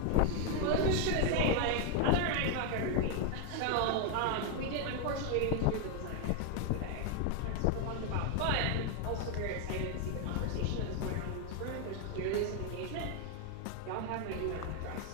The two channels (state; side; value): different; both; correlation 0.01